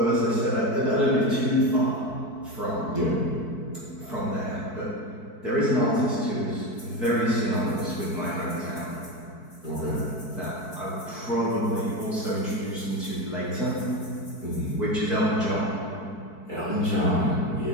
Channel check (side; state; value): right; late; 4.6 ms